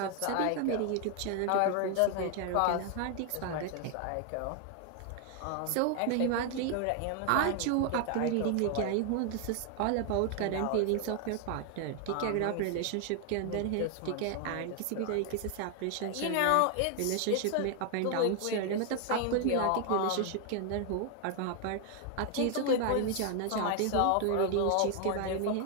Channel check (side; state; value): both; different; correlation 0.00